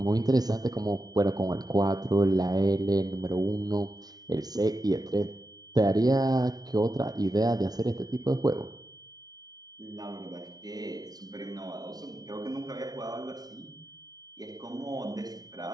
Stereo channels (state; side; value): late; left; 0.19 ms